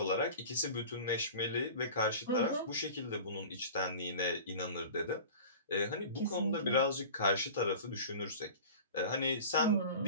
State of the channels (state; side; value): inverted; both; correlation -0.38